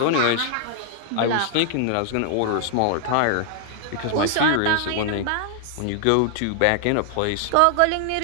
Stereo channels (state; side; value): different; both; correlation 0.00